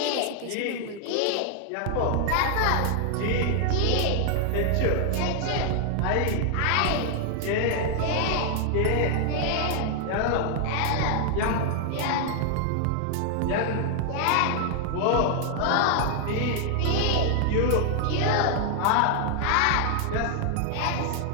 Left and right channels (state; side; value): different; both; correlation 0.00